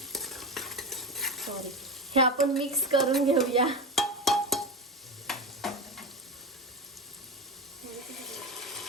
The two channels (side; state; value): both; normal; correlation 0.22